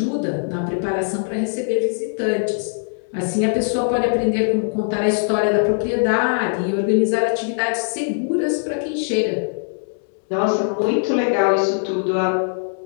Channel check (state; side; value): silent; right; digital silence